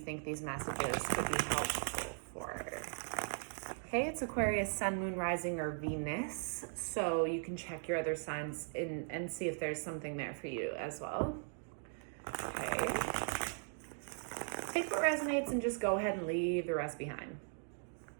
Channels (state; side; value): silent; left; 52 dB below the other